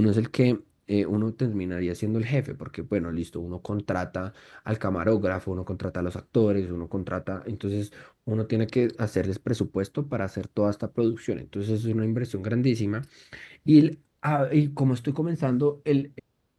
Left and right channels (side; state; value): both; identical; correlation 1.00